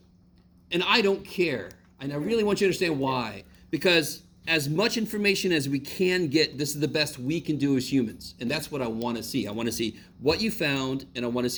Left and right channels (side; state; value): both; identical; correlation 1.00